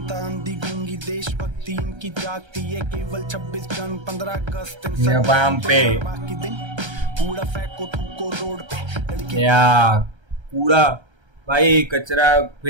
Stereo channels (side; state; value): left; late; 1.3 ms